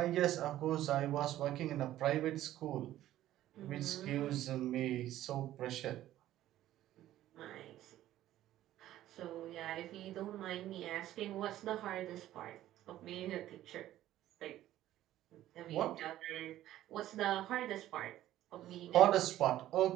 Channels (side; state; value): left; quieter; 13.6 dB